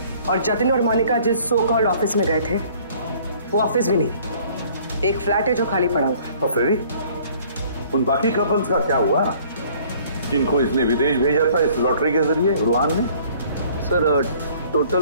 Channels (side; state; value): both; inverted; correlation -0.56